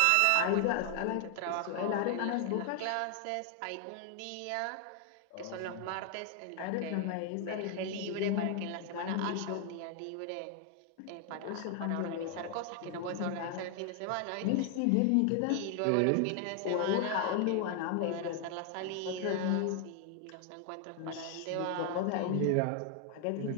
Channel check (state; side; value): different; both; correlation 0.00